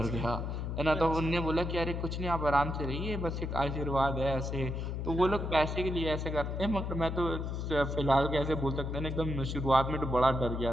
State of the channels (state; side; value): noise; left; hum, 3 dB below the sound